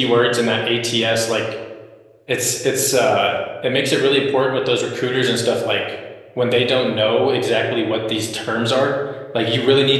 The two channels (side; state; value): both; identical; correlation 1.00